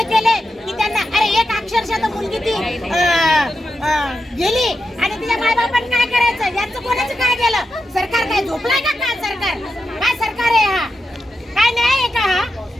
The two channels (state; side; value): normal; both; correlation 0.88